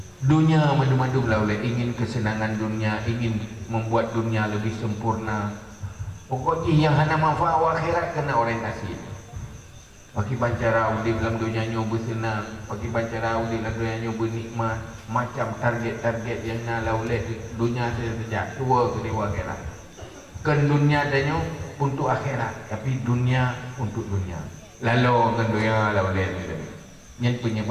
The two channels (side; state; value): both; identical; correlation 1.00